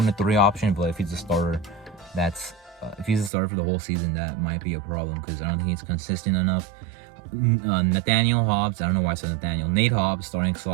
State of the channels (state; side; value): drops out; left; at 3.3 s